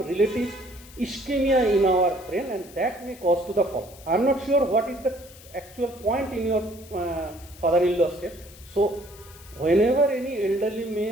relative ischemia in our brain, and that may cause to the fall. I'm not sure what is the actual point in your father-in-law's case. So whenever any elderly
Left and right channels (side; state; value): left; noise; hiss, 21 dB below the sound